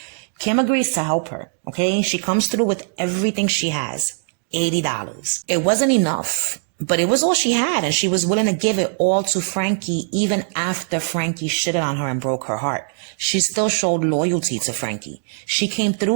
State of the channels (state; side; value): silent; left; digital silence